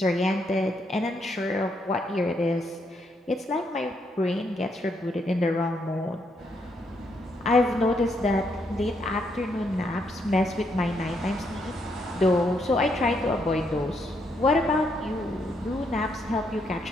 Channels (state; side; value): normal; both; correlation 0.76